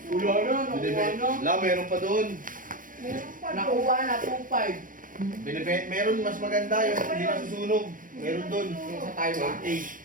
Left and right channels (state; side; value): late; left; 0.39 ms